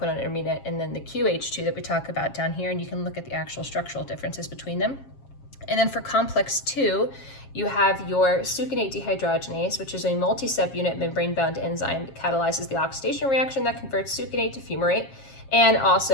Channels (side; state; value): right; late; 7.4 ms